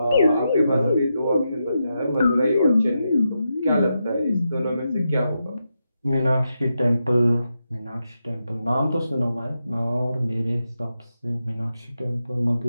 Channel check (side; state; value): both; inverted; correlation -0.86